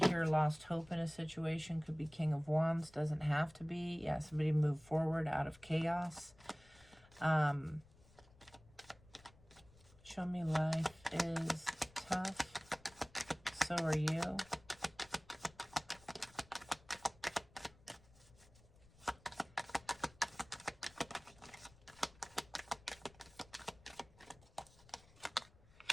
here lost hope in a situation. Could be King of Wands. Doesn't have to be. Yeah, somebody moved forward out of chaos. Show me life is tough. So are you.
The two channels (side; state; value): left; noise; rumble, 25 dB below the sound